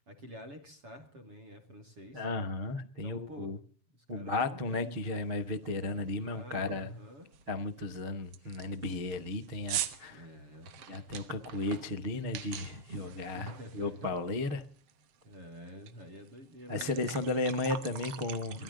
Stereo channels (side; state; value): left; late; 7.1 ms